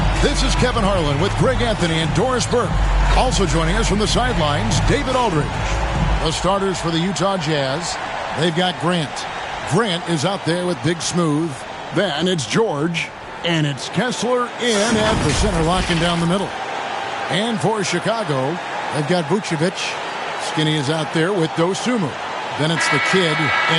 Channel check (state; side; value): identical; both; correlation 1.00